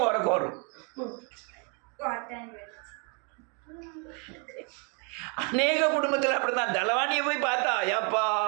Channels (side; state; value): left; quieter; 35.9 dB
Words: உறக்கம் வரும். அநேக குடும்பத்தில் அப்படிதான். தலைவாணியை போய் பார்த்தா ஏப்பா